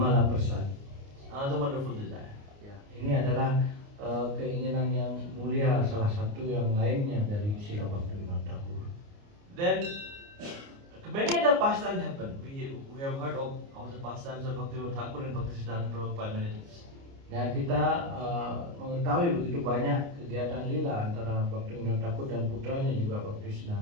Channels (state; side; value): late; left; 29 ms